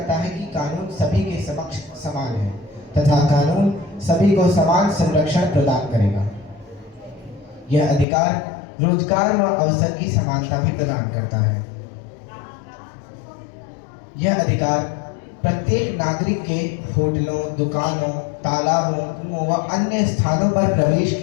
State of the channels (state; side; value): drops out; right; at 8.1 s